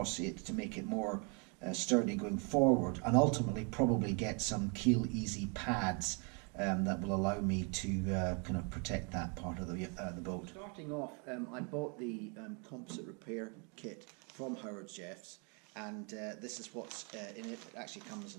it to make it more sturdy going forward, and ultimately probably get some keel easy pads that will allow me to kind of protect that part of the boat. Starting off, I bought the composite repair kit from Howard Jeff's, and this is what's in it. It actually comes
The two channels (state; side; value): quieter; left; 34.9 dB